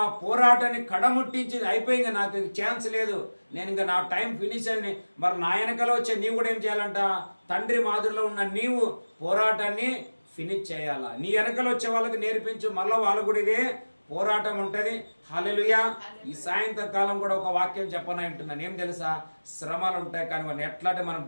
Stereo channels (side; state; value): both; inverted; correlation -1.00